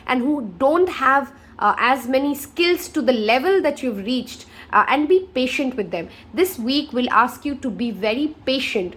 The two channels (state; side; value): identical; both; correlation 1.00